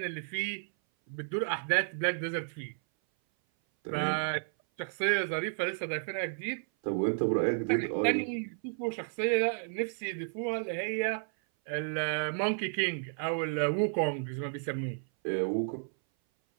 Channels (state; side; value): silent; left; 56 dB below the other